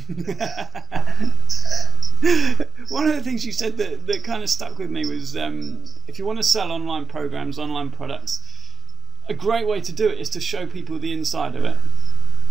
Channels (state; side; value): quieter; left; 5.4 dB